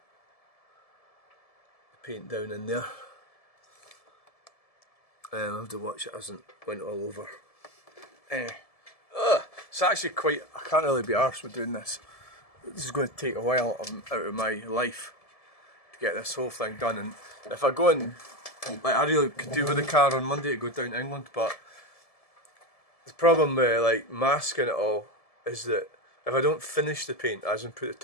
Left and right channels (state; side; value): late; right; 1.7 ms